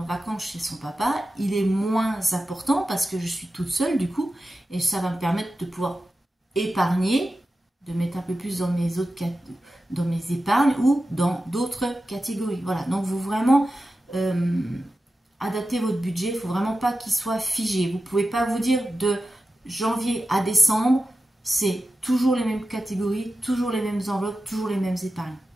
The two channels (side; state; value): both; normal; correlation 0.92